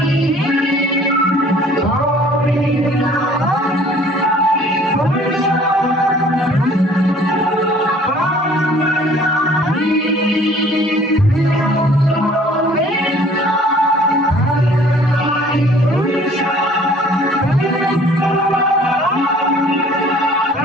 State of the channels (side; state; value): both; normal; correlation 0.53